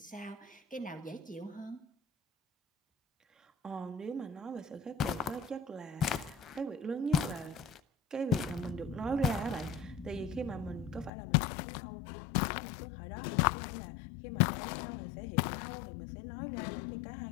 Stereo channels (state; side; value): drops out; right; at 11.1 s